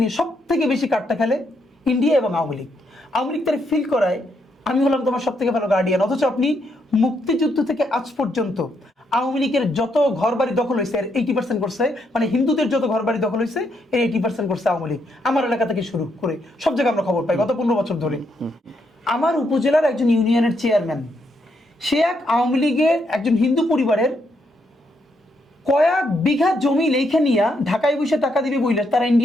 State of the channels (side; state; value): both; normal; correlation 0.77